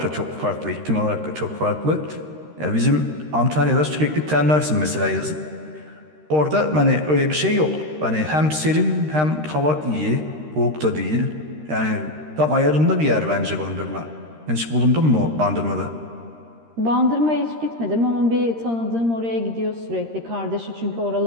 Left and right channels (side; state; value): left; late; 13 ms